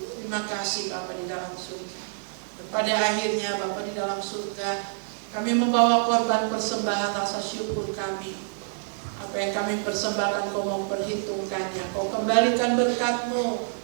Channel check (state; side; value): silent; left; digital silence